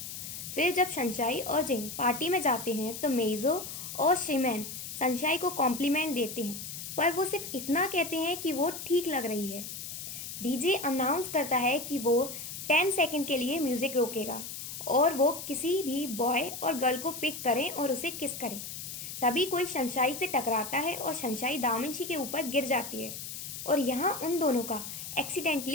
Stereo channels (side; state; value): left; noise; hiss, 8 dB below the sound